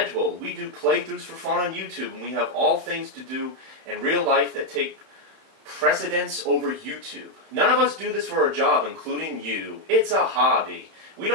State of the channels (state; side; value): late; left; 31 ms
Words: We do playthroughs for fun on YouTube, and we have all things to do in real life that take precedence over YouTube. None of us do this for a job, including you. It's a hobby. We